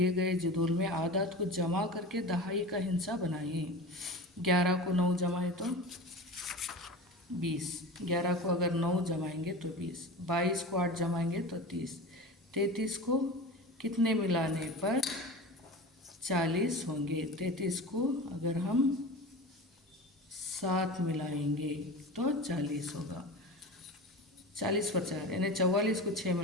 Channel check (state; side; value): normal; both; correlation 0.31